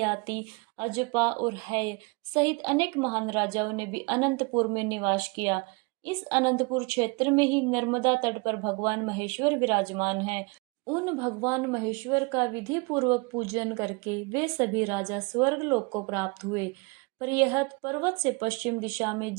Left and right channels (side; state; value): left; quieter; 28.9 dB